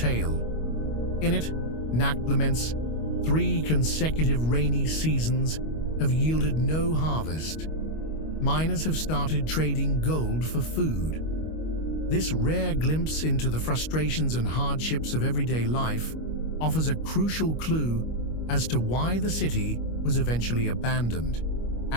In it, Nakt laments 3 consecutive rainy seasons have yielded no harvest. Miners have started trading gold for food. This rare glimpse into the frustrations and hardships of everyday life offers a crucial clue as to why the city was eventually abandoned,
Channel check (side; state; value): right; late; 25 ms